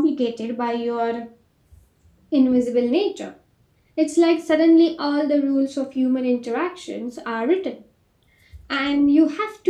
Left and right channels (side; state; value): both; identical; correlation 1.00